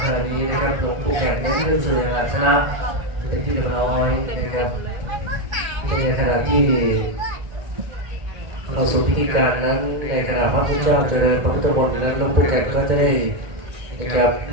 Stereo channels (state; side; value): late; left; 2.1 ms